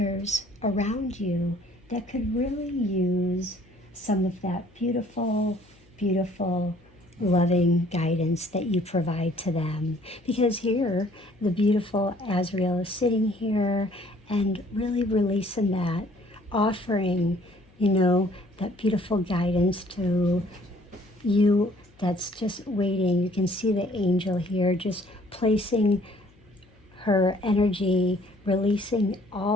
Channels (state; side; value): noise; left; hum, 29 dB below the sound